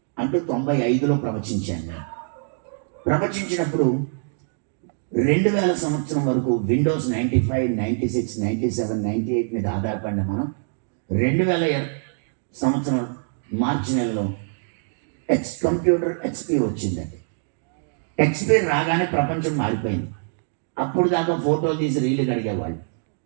అంటూ 95లో ప్రవచించాను నేను. ప్రవచించినప్పుడు 2000 సంవత్సరం వరకు విండోస్ 95, 96, 97, 98 మీద ఆధారపడిన మనం 2000 సంవత్సరం మార్చి నెలలో కంప్యూటర్ ఎక్స్పీ వచ్చిందండి. ఎక్స్పీ రాగానే ప్రపంచం మారిపోయింది. అప్పుడు దాకా ఫోటోలు తీసి రీళ్లు కడిగేవాళ్ళు,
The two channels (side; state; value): left; silent; digital silence